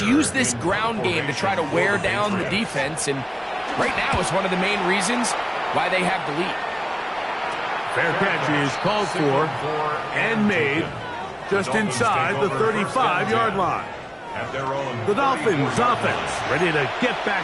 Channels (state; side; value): identical; both; correlation 1.00